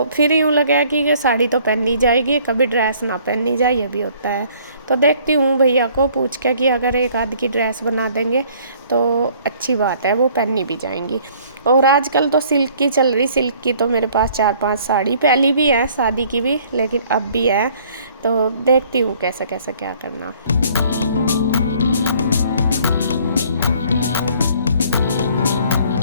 फिर यूँ लगा कि ये साड़ी तो पहननी जाएगी, कभी ड्रेस ना पहननी जाए, ये भी होता है। तो देखती हूँ भैया को पूछ के कि अगर एक आध की ड्रेस बना देंगे तो अच्छी बात है, वो पहननी भी जाएंगी। और आजकल तो सिल्क की चल रही, सिल्क की तो मेरे पास 4-5 साड़ी पहली भी है, शादी की भी, लेकिन अब भी है। तो देखती हूँ कैसे कैसे क्या करना।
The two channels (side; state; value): both; inverted; correlation -0.58